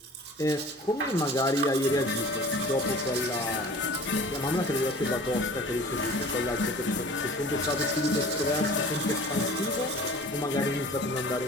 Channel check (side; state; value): both; normal; correlation 0.44